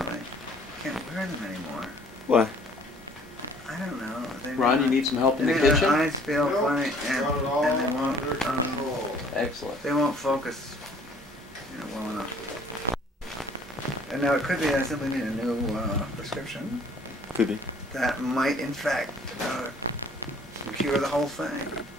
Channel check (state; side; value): normal; both; correlation 0.56